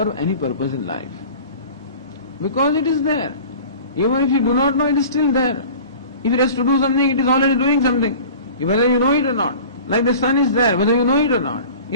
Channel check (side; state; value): both; inverted; correlation -0.41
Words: any purpose in life. Because it is there. Even if you do not know, it is still there. If it has to do something, it is already doing something, whether you know it or not. Like the sun is there, whether you know it or not.